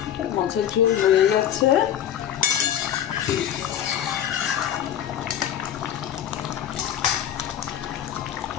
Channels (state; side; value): quieter; right; 10.2 dB